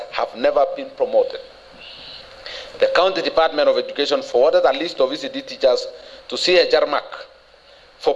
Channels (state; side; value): identical; both; correlation 1.00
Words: have never been promoted. The County Department of Education forwarded a list of ECD teachers to CHR MAC for